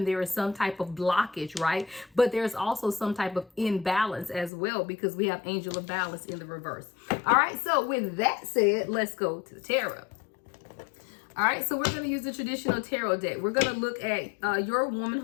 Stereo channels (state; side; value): drops out; right; at 4.5 s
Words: There is some type of blockage, right? But there's also some type of imbalance as well, because we have angel of balance in the reverse. All right, so with that said, let's go to the tarot. All right, so we're going to use the traditional tarot deck. We're going to look at your woman